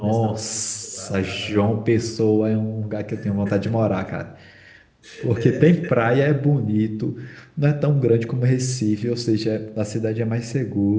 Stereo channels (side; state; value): both; identical; correlation 1.00